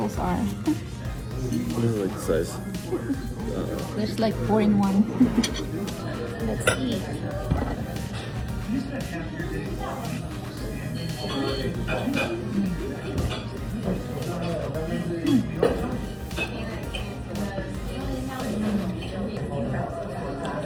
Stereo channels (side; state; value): both; identical; correlation 1.00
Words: are. What is it, like the size? There's like 4 in 1. Let's eat. Ito